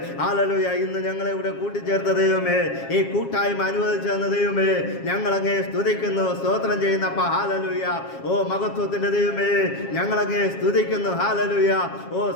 ഹല്ലേലൂയ. ഇന്ന് ഞങ്ങളെ ഇവിടെ കൂട്ടിച്ചേർത്ത ദൈവമേ, ഈ കൂട്ടായ്മ അനുവദിച്ചു തന്ന ദൈവമേ, ഞങ്ങളങ്ങേ സ്തുതിക്കുന്നു, സ്തോത്രം ചെയ്യുന്നപ്പാ. ഹല്ലേലൂയ. ഓ മഹത്വത്തിന്റെ ദൈവമേ, ഞങ്ങളങ്ങേ സ്തുതിക്കുന്നു. ഹല്ലേലൂയ. ഓ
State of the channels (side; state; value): right; late; 7.3 ms